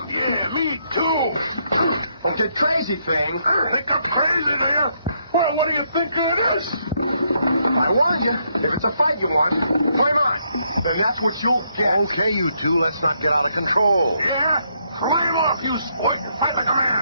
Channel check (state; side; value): inverted; both; correlation -0.75